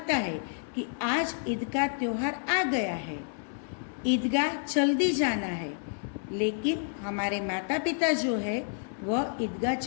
है कि आज ईद का त्यौहार आ गया है, ईदगाह जल्दी जाना है, लेकिन हमारे माता पिता जो है वह ईदगाह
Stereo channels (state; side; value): silent; right; 58 dB below the other